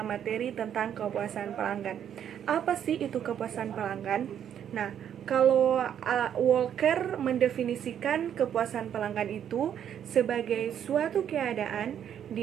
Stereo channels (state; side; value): quieter; left; 9.4 dB